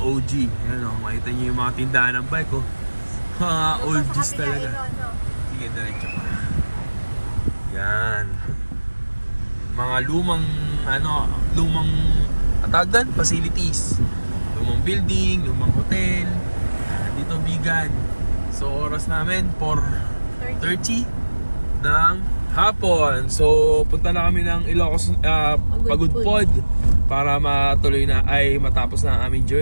OG. Ayan o, makita nyo yung mga tindahan ng bike oh. Mga oldies talaga. Sige, diretso pa. Yan. Mga lumang atagan, facilities. Lumang building, lumang hotel. Dito vegan. So oras namin 4:30 ng hapon. So punta na kami ng Ilocos Pagudpod para matuloy na ay matapos na ang aming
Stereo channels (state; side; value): inverted; both; correlation -1.00